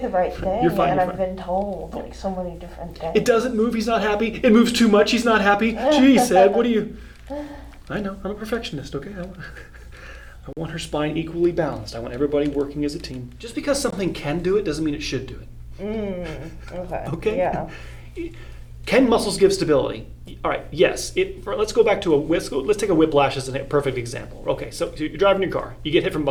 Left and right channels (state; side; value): identical; both; correlation 1.00